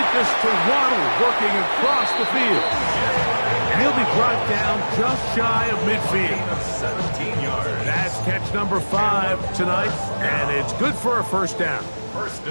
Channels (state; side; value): inverted; both; correlation -1.00